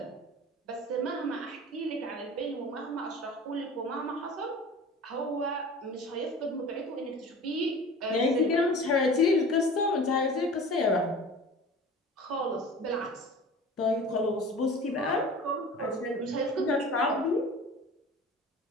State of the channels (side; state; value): both; normal; correlation 0.39